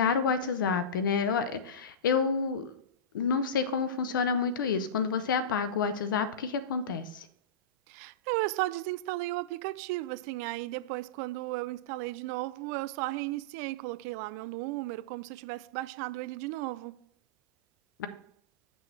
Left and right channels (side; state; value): both; normal; correlation -0.18